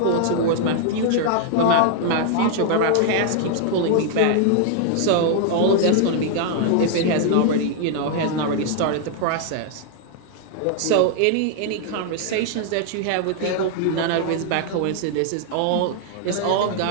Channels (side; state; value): both; different; correlation 0.00